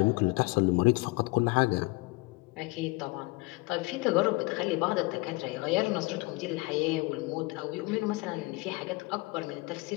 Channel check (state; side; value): quieter; right; 23.6 dB